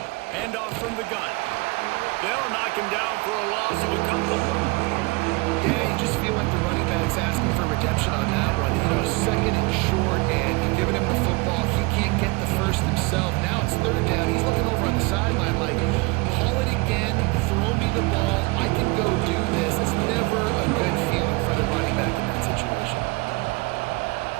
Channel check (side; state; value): left; quieter; 26.3 dB